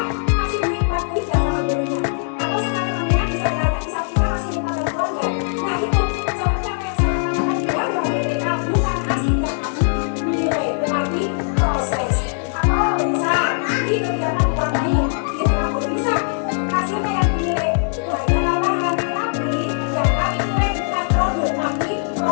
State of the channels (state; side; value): silent; right; digital silence